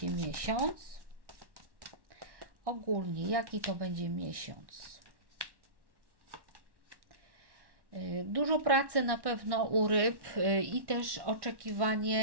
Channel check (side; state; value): left; late; 1.1 ms